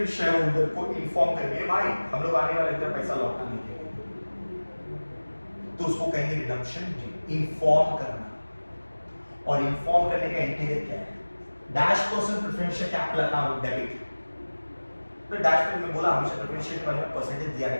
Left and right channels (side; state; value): both; inverted; correlation -1.00